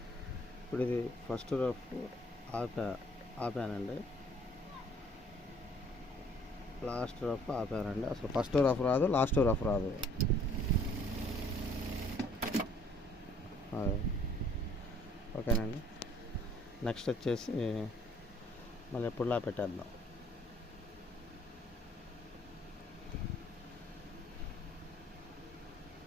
ఇప్పుడు ఇది ఫస్ట్ రఫ్ ఆపానండి. లాస్ట్ రఫ్ ఆపానండి. అసలు ఫస్ట్ రఫ్ రాదు, లాస్ట్ రఫ్ రాదు. ఓకేనండి. నెక్స్ట్ వచ్చేసి మళ్ళీ ఎప్పుడులా పెట్టేద్దాం.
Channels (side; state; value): both; normal; correlation 0.59